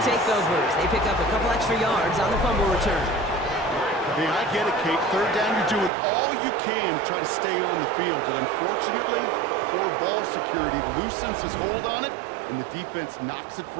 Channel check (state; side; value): drops out; left; at 5.9 s